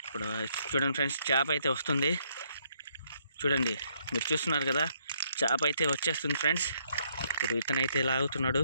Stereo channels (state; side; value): inverted; both; correlation -0.71